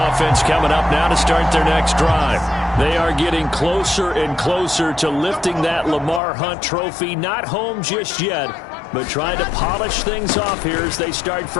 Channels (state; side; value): drops out; right; at 6.2 s